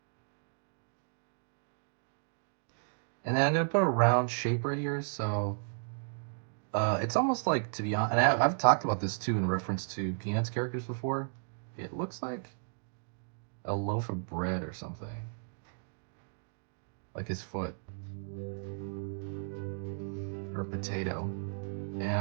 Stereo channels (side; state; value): left; silent; digital silence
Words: And then I'm going to put a round shape right here. So it's almost like, to be honest, and I've talked about this too in reference to Peanuts characters before. It looks like a loaf of bread or something. Like his foot. or potato. And